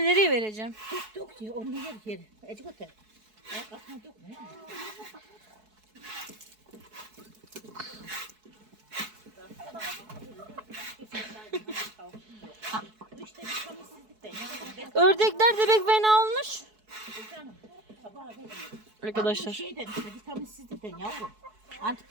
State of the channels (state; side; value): late; left; 4.6 ms